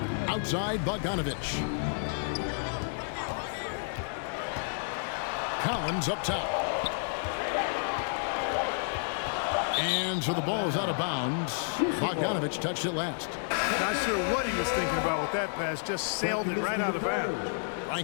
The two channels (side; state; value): right; silent; digital silence